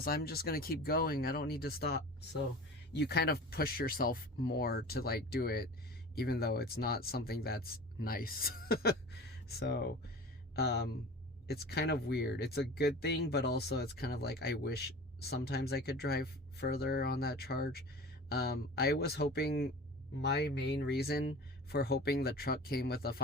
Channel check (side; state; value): both; normal; correlation 0.37